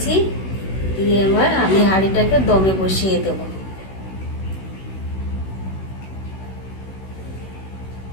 দিয়ে এবার আমি হাঁড়িটাকে দমে বসিয়ে দেব।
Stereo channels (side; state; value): right; late; 16 ms